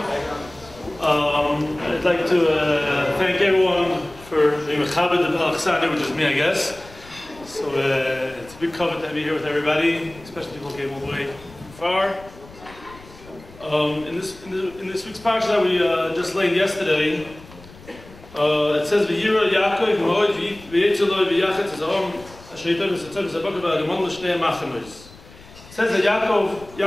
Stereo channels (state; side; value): noise; left; rumble, 21 dB below the sound